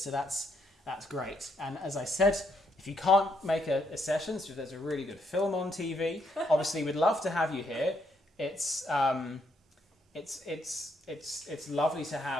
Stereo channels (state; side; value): normal; both; correlation 0.74